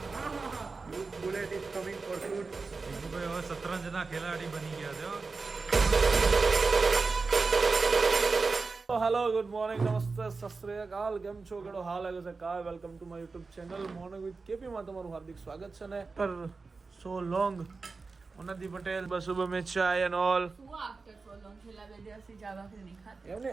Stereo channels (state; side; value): quieter; left; 4.2 dB